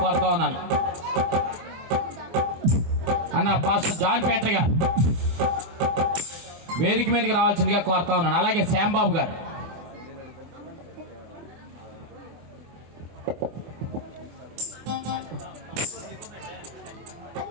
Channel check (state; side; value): late; left; 24 ms